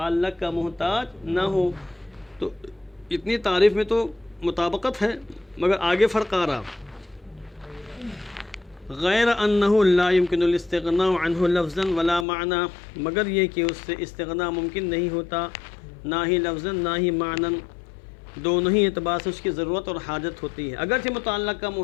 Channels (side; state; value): right; drops out; at 12.2 s